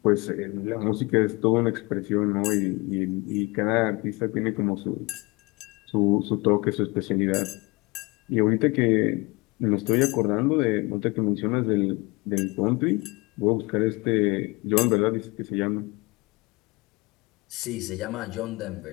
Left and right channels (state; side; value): quieter; right; 25.2 dB